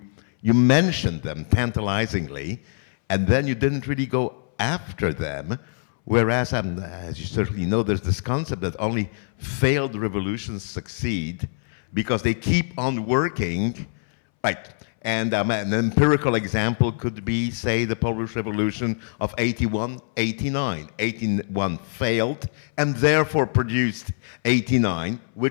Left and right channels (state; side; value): silent; right; 62 dB below the other